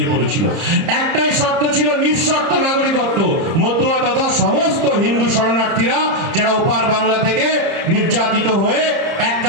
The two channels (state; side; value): late; left; 30 ms